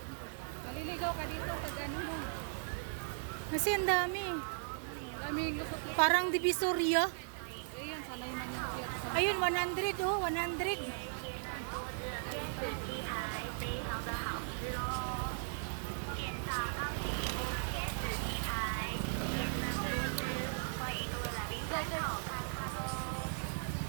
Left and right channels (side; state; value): left; silent; 53 dB below the other